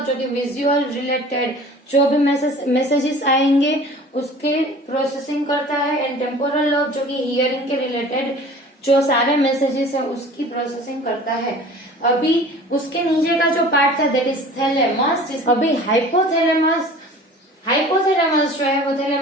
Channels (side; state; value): both; normal; correlation 0.44